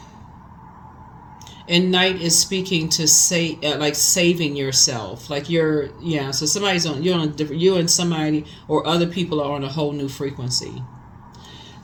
And Knight is speaking to say like saving yourself, like so somebody's on, you're on a different, you and somebody or other people are on a whole new frequency.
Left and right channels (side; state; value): both; identical; correlation 1.00